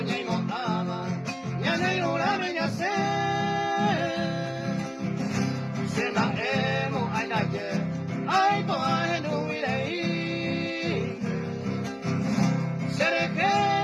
y Motama, ya no hay una niña se la hemos a ayer, ay, toda en un virey. Se le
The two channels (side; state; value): both; identical; correlation 1.00